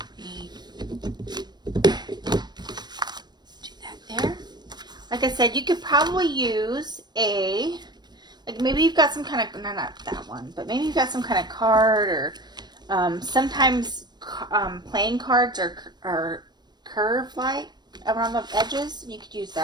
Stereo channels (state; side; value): late; left; 0.21 ms